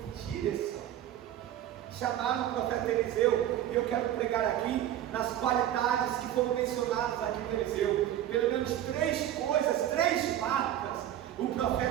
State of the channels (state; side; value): quieter; left; 11.9 dB